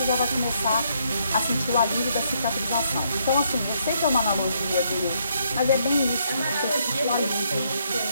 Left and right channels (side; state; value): both; inverted; correlation -0.73